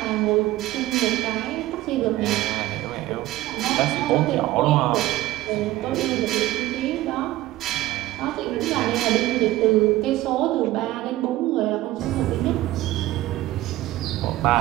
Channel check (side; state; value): left; quieter; 16.3 dB